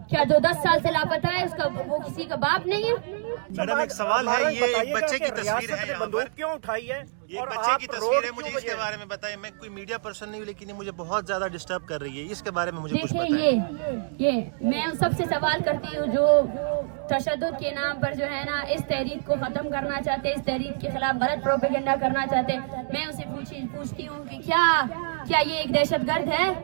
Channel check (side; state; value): left; silent; digital silence